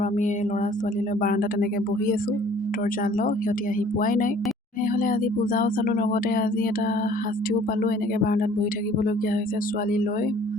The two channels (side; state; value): both; normal; correlation 0.54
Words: আমি ল'ৰা ছোৱালী লৈ বাৰাণ্ডাত তেনেকৈ বহি আছোঁ। দৰ্জা লক, সিহঁতি আহি পোৱাই নাই। তেনেহ'লে আজি পূজাও চালোঁ, লগতে আজি এটা শাস্তিও পালোঁ। এনেকৈ বাৰাণ্ডাত বহি থাকিবলগীয়া হৈছে ছোৱালী লৈ।